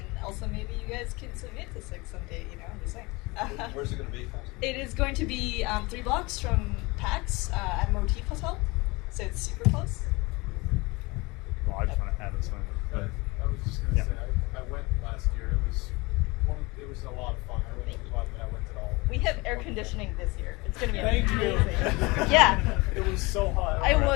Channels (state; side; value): quieter; right; 24.5 dB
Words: also maybe you guys can submit to Six someday, I'm just saying. Where's it going to be? It is going to be 3 blocks from PAX at Motif Hotel, so it's super close. Well, I just want to add this one. I was just going to say, I went last year. It was a lot of fun. I really glad that I went at all. We have air conditioning this year. It's going to be Thank amazing. you. Yeah. It was so hot.